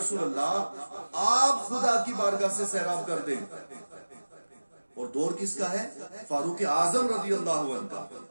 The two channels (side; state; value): both; inverted; correlation -1.00